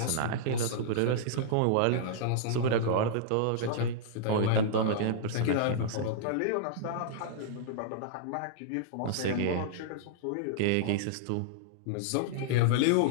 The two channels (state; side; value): different; both; correlation -0.02